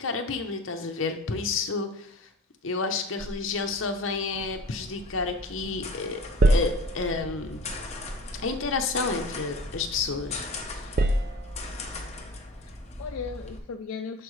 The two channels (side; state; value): both; normal; correlation 0.40